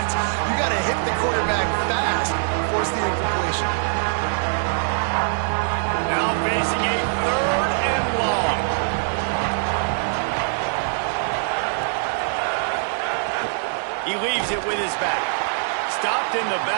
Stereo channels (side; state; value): left; silent; digital silence